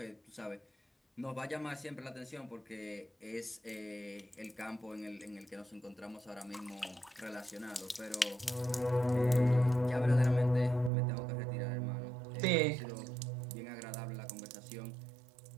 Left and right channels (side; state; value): left; drops out; at 10.9 s